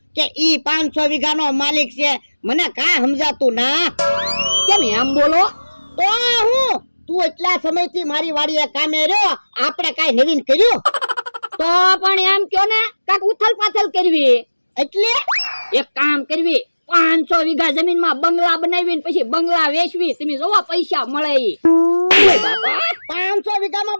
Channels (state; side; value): inverted; both; correlation -1.00